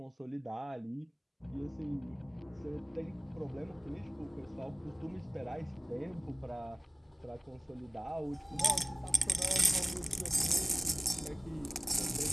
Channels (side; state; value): both; normal; correlation 0.97